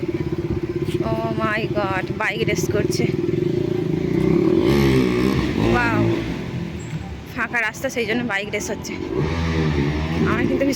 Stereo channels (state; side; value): identical; both; correlation 1.00